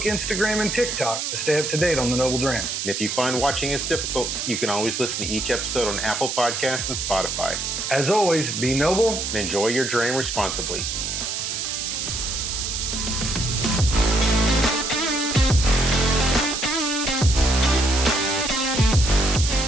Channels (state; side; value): noise; right; hiss, 3 dB below the sound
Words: Instagram, and TikTok to stay up to date on the Noble Dram. And if you find watching us difficult, you can always listen to each episode on Apple Podcasts and Spotify. As always, be noble And enjoy your dram responsibly.